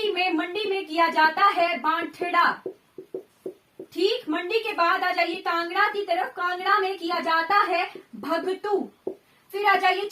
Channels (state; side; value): identical; both; correlation 1.00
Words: में, मंडी में किया जाता है बांठड़ा, ठीक। मंडी के बाद आ जाइए कांगड़ा की तरफ। कांगड़ा में किया जाता है भगतू। फिर आ जाइए